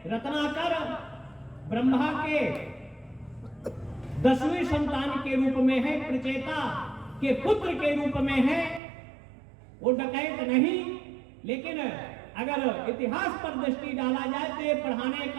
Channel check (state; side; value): drops out; left; at 8.8 s